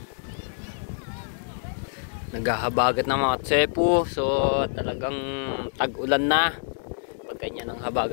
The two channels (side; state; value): right; silent; 61 dB below the other